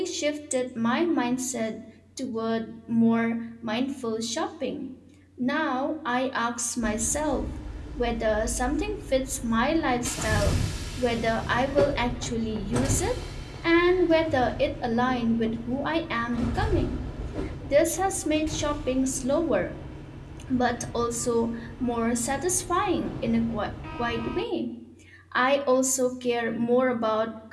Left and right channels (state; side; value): identical; both; correlation 1.00